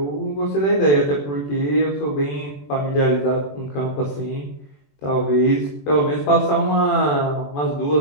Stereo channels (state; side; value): late; right; 21 ms